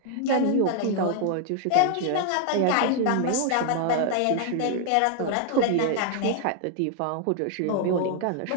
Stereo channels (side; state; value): both; different; correlation 0.00